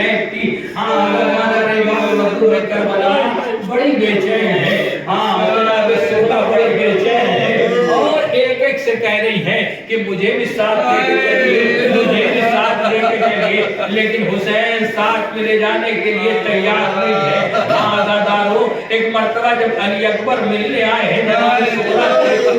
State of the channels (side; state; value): both; identical; correlation 1.00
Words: کی۔ ہاں کربلا بڑی بے چین ہے، ہاں جناب سودا بڑی بے چین ہے اور ایک ایک سے کہہ رہی ہے کہ مجھے بھی ساتھ لے کے چلیے، مجھے بھی ساتھ لے کے چلیے، لیکن حسین ساتھ میں لے جانے کے لیے تیار نہیں ہے۔ ہاں آزادارو ایک مرتبہ جب علی اکبر ملنے آئے ہیں جناب سودا سے